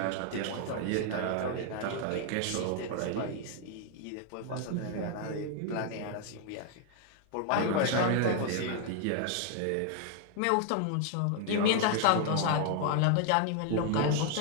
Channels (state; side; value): different; both; correlation 0.00